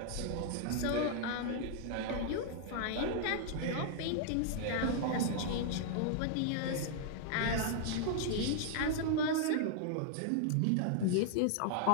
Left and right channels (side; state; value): both; different; correlation -0.01